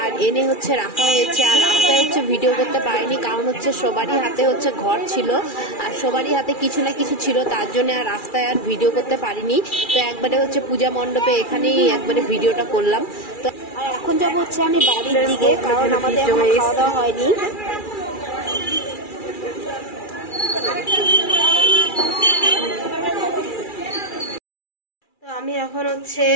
আর এনে হচ্ছে রাখা হয়েছে। আর রাস্তায় হচ্ছে ভিডিও করতে পারিনি, কারণ হচ্ছে সবারই হাতে হচ্ছে ঘট ছিল, আর সবারই হাতে কিছু না কিছু ছিল, তার জন্য আর রাস্তায় আর ভিডিও করতে পারিনি। তো একবারে হচ্ছে পূজা মণ্ডপে এখানেই একবারে ভিডিওটা করলাম। তো আর এখন যাবো হচ্ছে আমি বাড়ির দিকে, কারণ আমাদের খাওয়া দাওয়া হয়নি। আমি এখন হচ্ছে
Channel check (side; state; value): right; late; 2.4 ms